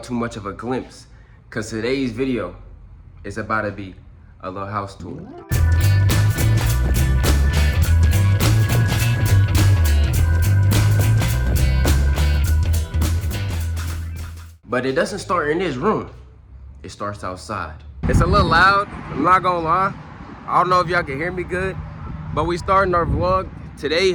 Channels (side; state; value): both; identical; correlation 1.00